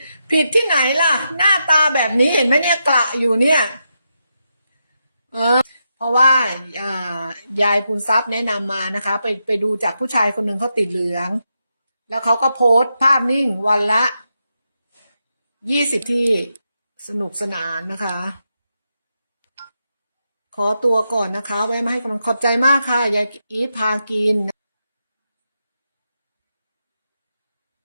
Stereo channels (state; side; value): inverted; both; correlation -0.85